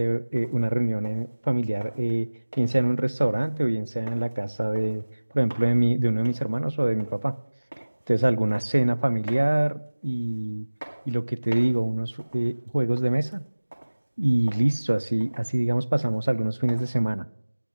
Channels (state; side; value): inverted; both; correlation -1.00